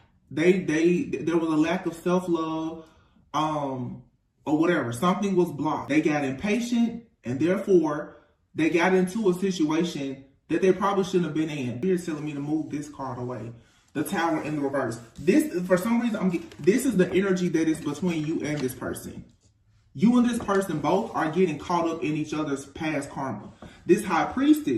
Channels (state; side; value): identical; both; correlation 1.00